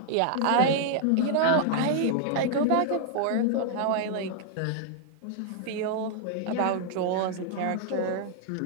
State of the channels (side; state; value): both; different; correlation 0.00